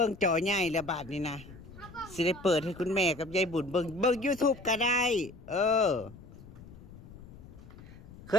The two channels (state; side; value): noise; left; rumble, 18 dB below the sound